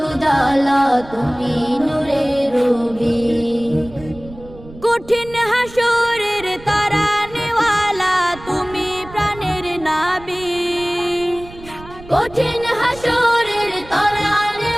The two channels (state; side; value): noise; right; rumble, 18 dB below the sound